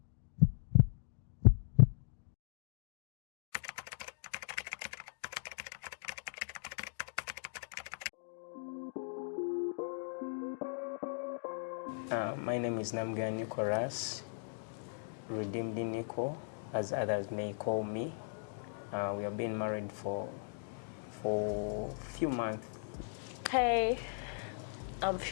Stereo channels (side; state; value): right; silent; digital silence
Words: My name is Namga Nicholas, Redeemed Nico, as others may call me. We have been married for a few months. Hey, I'm